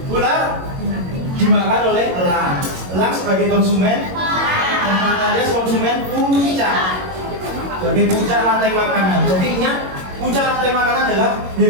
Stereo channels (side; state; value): left; late; 22 ms